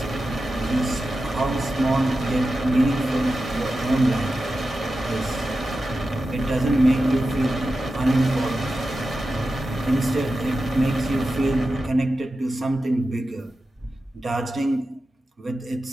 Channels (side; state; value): both; normal; correlation 0.92